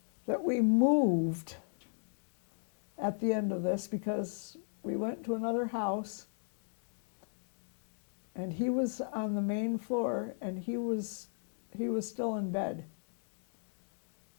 that we moved at the end of this because we went to another house, and he was on the main floor, and he was still in bed.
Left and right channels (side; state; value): right; silent; digital silence